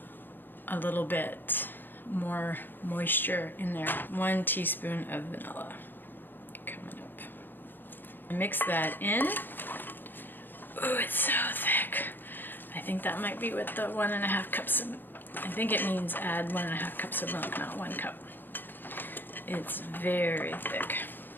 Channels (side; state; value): right; late; 0.093 ms